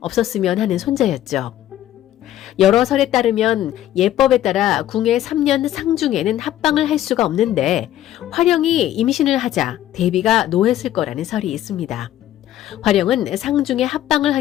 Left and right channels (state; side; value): quieter; right; 12.7 dB